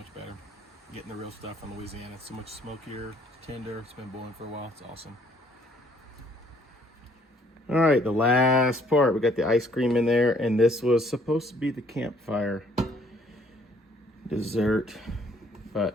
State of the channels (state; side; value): normal; both; correlation 0.63